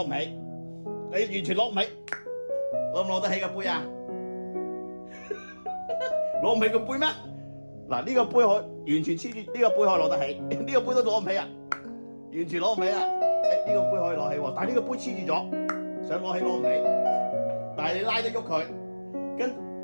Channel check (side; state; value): both; inverted; correlation -1.00